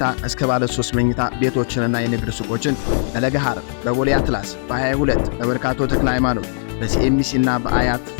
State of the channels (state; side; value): silent; right; digital silence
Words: እስከ ባለ 3 መኝታ ቤቶችንና የንግድ ሱቆችን በለገሃር በቦሌ አትላስ በ22 በመርካቶ ተክለ ሃይማኖት በሲኤምሲ እና በአያት